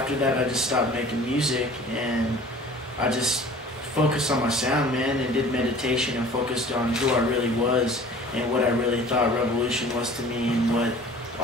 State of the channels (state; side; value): normal; both; correlation 0.46